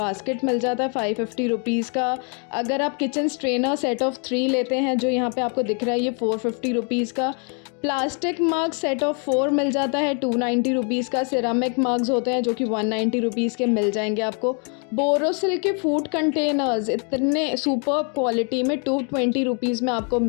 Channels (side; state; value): right; quieter; 38.9 dB